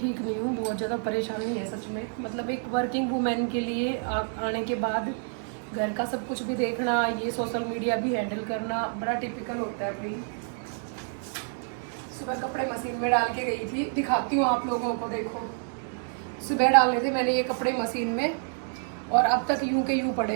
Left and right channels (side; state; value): left; silent; 59 dB below the other